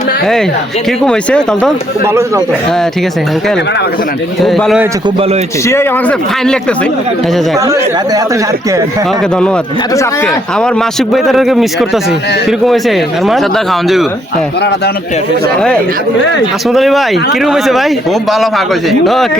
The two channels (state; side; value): normal; both; correlation 0.71